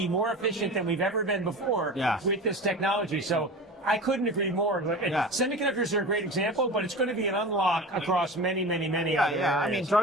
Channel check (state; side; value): normal; both; correlation 0.32